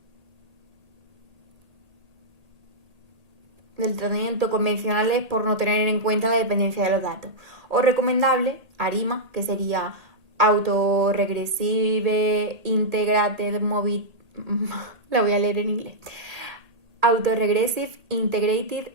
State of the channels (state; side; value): late; left; 1.8 ms